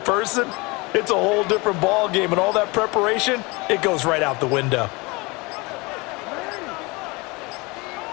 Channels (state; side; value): quieter; right; 25.8 dB